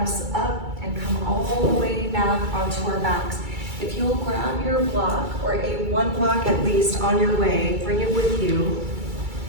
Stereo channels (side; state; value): left; late; 2.3 ms